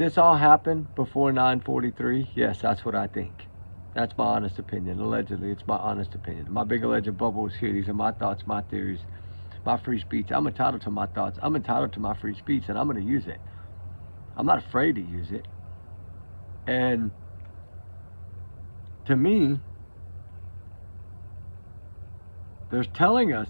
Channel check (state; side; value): inverted; both; correlation -1.00